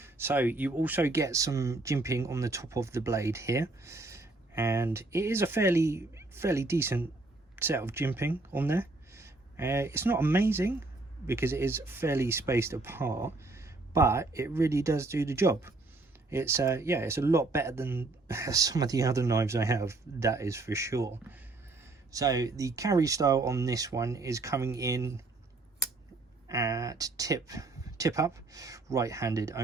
So you also get some jimping on the top of the blade here, and it is a fairly decent set of jimping on there. It's not amazing because it is fairly spaced apart, but it really does do the job. It's yeah, it's a lot better than some of the other knives I have, that is for sure. So the carry style on this one is coming in at tip up, right-handed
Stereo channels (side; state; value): left; quieter; 3.2 dB